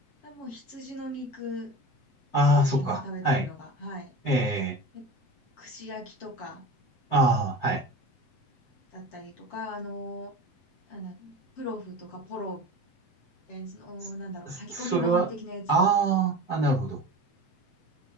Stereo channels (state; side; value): late; right; 7.9 ms